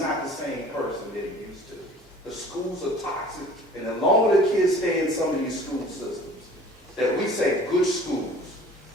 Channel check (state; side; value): normal; both; correlation 0.48